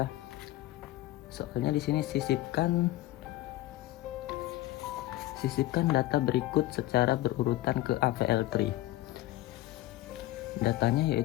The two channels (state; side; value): quieter; right; 16.3 dB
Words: Soalnya di sini sisipkan data berikut secara berurutan ke AVL3. Datanya